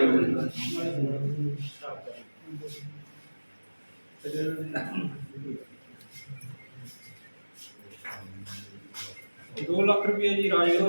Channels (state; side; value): inverted; both; correlation -1.00